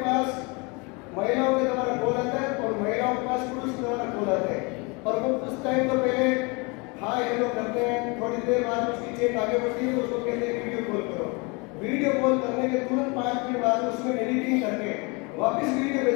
महिलाओं के द्वारा कॉल आता है और महिलाओं के पास पुरुष के द्वारा कॉल आता है, और वो कुछ टाइम तो पहले हाँ ये लोग करते हैं, थोड़ी देर बाद उसकी चेक आगे बढ़ती है तो उसको कहते हैं वीडियो कॉल करो। वीडियो कॉल करने के तुरंत 5 मिनट बाद उसमें एडिटिंग करके वापस वीडियो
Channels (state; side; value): quieter; right; 29.3 dB